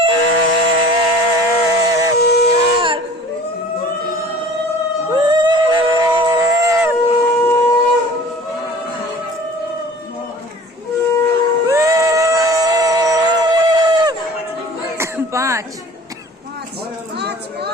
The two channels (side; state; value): both; normal; correlation 0.45